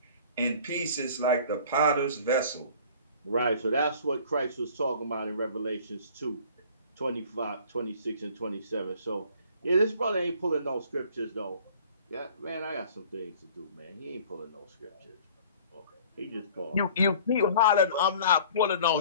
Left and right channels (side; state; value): both; inverted; correlation -0.50